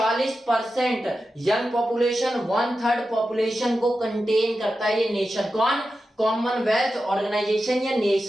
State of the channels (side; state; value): both; normal; correlation 0.91